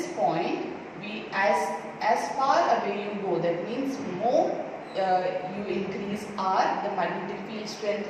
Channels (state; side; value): identical; both; correlation 1.00